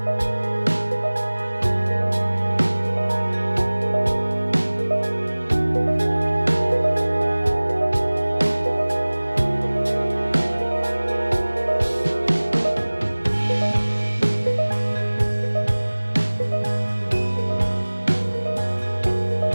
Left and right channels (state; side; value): inverted; both; correlation -1.00